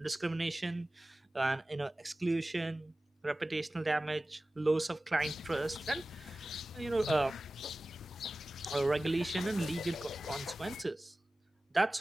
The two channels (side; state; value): both; normal; correlation 0.96